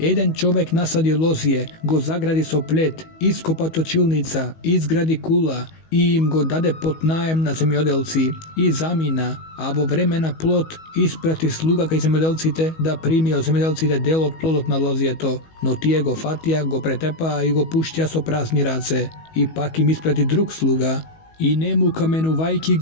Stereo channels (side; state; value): right; late; 19 ms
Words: човек насади лозје, го загради со плет, ископа точилница, изгради кула и им го даде под наем на земјоделци и замина, а во време на плод испрати слуга кај земјоделците да прими од земјоделците дел од плодот на лозјето, но тие го фатија, го претепаа и го пуштија со празни раце. И пак им испрати друг слуга, и нему каменувајки